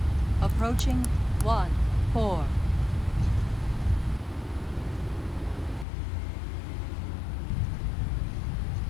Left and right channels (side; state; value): right; drops out; at 5.9 s